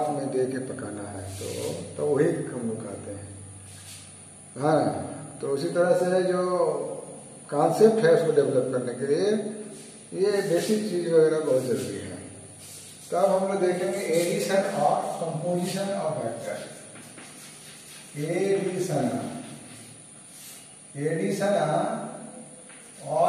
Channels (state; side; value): identical; both; correlation 1.00